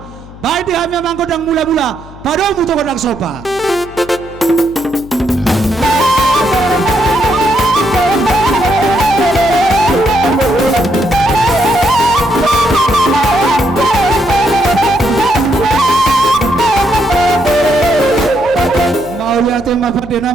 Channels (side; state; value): left; noise; hum, 18 dB below the sound